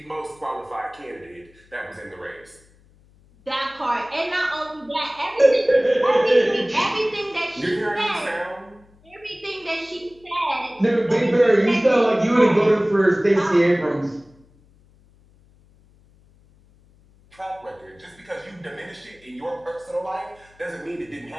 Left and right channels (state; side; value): noise; left; hum, 29 dB below the sound